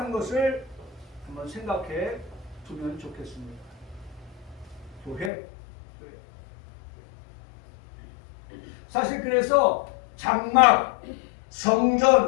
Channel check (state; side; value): drops out; right; at 5.3 s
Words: 것을 한번 생각해 두면 좋겠습니다. 교회. 사실 그래서 장막, 성전,